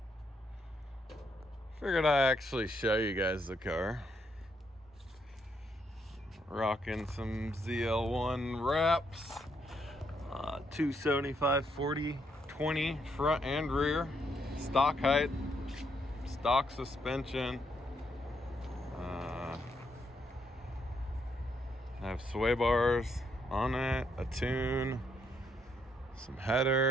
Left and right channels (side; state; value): both; normal; correlation 0.75